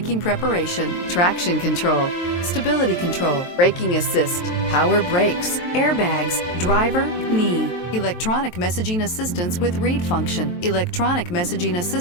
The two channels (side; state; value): right; late; 23 ms